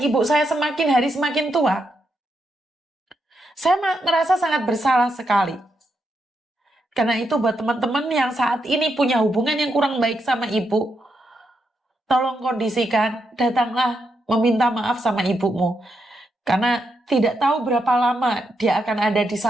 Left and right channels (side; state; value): both; normal; correlation 0.82